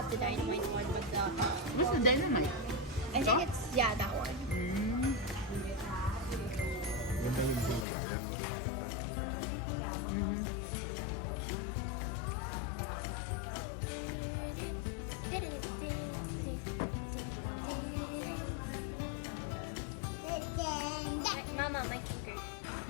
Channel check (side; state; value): right; drops out; at 7.9 s